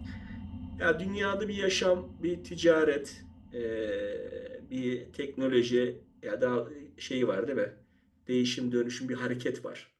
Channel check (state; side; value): identical; both; correlation 1.00